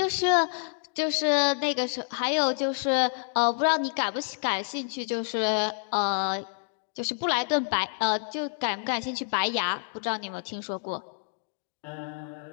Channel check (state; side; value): silent; right; 59 dB below the other